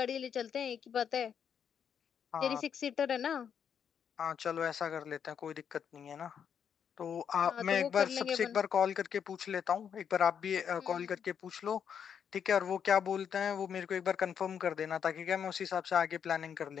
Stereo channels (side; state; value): right; quieter; 7.8 dB